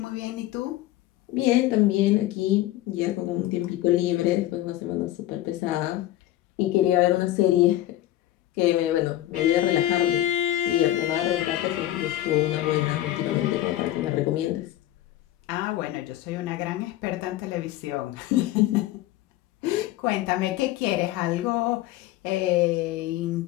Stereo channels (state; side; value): quieter; right; 14.4 dB